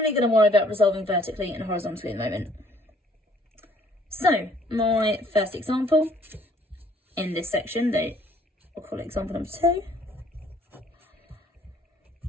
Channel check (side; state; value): both; normal; correlation 0.61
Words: going to worry about resolving vertically and horizontally at the moment. So my first example in this section, we'll call it example number 2.